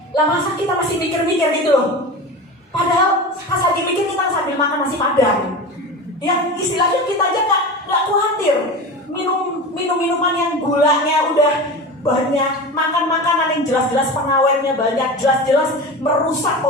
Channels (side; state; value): both; normal; correlation 0.29